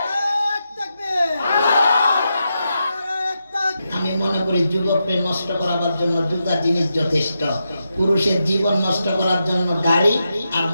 আমি মনে করি যুবককে নষ্ট করার জন্য দুটা জিনিস যথেষ্ট। পুরুষের জীবন নষ্ট করার জন্য গাড়ি, আর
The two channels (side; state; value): both; inverted; correlation -0.87